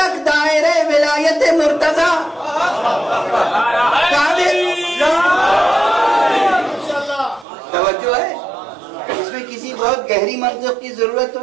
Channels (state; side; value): drops out; left; at 7.5 s